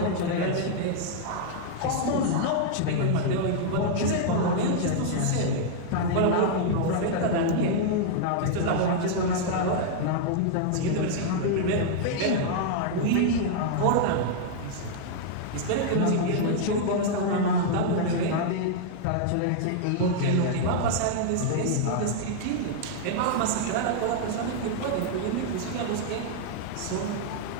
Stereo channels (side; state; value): both; different; correlation -0.01